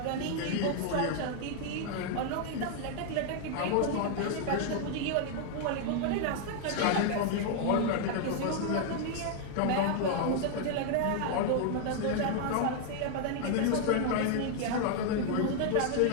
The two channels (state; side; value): different; both; correlation 0.00